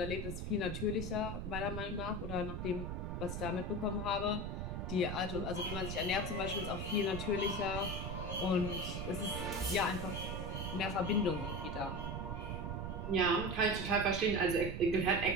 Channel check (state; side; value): noise; right; rumble, 4 dB below the sound